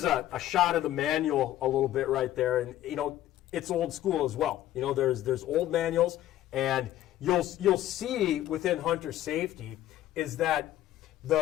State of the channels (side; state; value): right; quieter; 13.4 dB